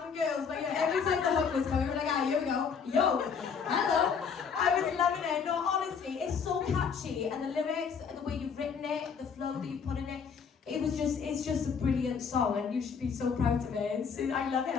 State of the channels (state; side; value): quieter; right; 6.3 dB